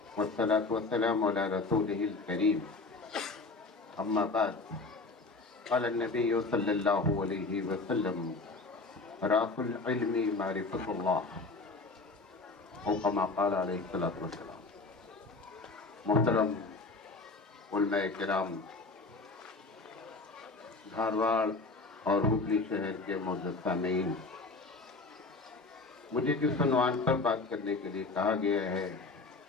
والصلاة والسلام علی رسولہ الکریم اما بعد قال النبی صلی اللہ علیہ وسلم راس العلم معرفۃ اللہ او کما قال علیہ الصلوۃ والسلام۔ محترم علماء کرام، دھارواڑ اور ہبلی شہر کے معزز سامعین، مجھے جس عنوان پر بات کرنے کے لیے کہا گیا ہے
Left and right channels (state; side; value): quieter; right; 3.7 dB